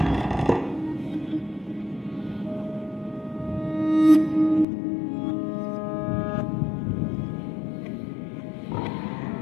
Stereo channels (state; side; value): drops out; right; at 4.7 s